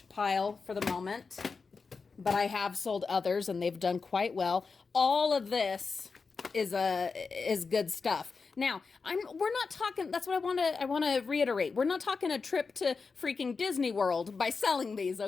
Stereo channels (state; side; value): quieter; right; 4.7 dB